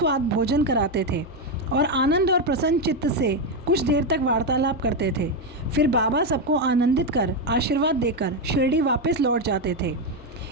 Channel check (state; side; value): normal; both; correlation 0.07